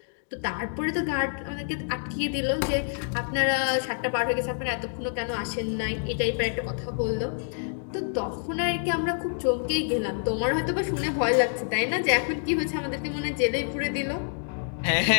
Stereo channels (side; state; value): right; silent; digital silence